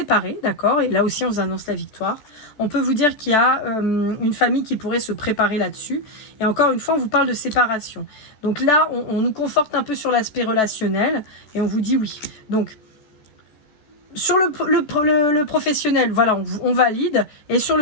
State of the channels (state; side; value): late; right; 14 ms